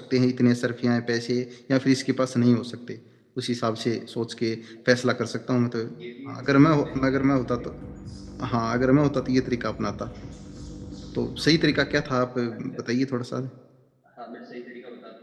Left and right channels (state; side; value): identical; both; correlation 1.00